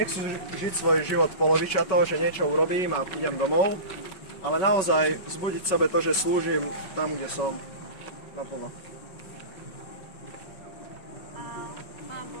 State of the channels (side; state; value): right; late; 5.3 ms